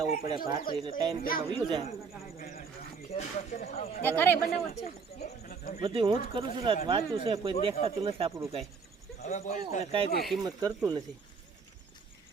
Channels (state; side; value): quieter; left; 5.3 dB